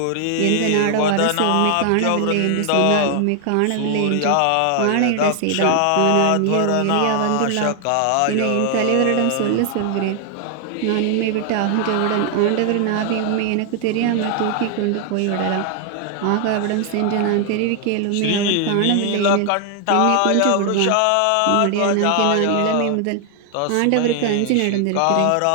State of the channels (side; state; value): both; different; correlation 0.00